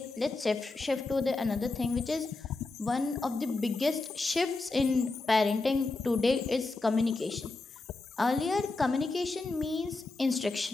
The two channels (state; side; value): quieter; right; 3.4 dB